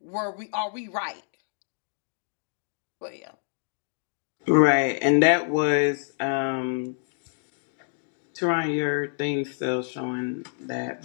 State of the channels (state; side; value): silent; right; 60 dB below the other